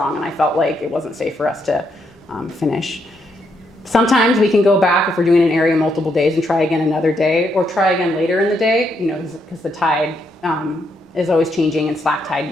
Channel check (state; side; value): normal; both; correlation 0.77